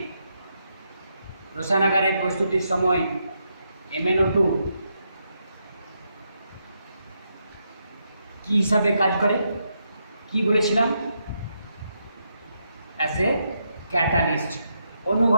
রসায়নাগারে প্রস্তুতির সময় MnO2 কি হিসাবে কাজ করে কি বলেছিলাম, অ্যাজ এ ক্যাটালিস্ট,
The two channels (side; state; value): both; inverted; correlation -0.81